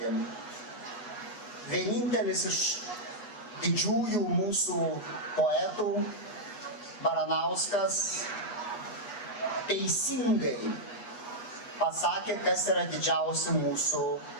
Vienintelis iš didžiųjų mūsų poetų, Baranauskas, teisingai pasakė, kas yra didžiausi mūsų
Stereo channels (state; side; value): late; right; 8.3 ms